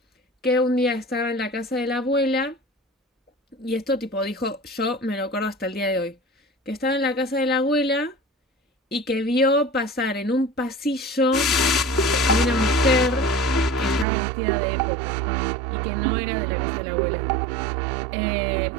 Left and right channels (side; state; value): left; drops out; at 14.1 s